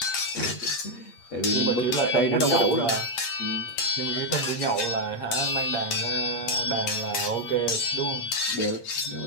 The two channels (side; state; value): right; late; 8.6 ms